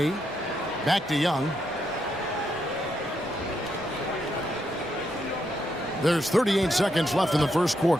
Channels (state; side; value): normal; both; correlation 0.79